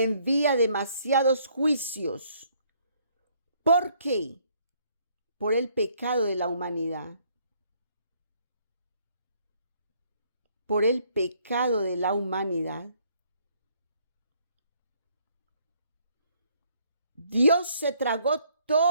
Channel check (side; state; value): both; inverted; correlation -0.66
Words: demasiados juicios. ¿Por qué? Por el pecado de la humanidad. Por el pecado de la humanidad. Dios se tragó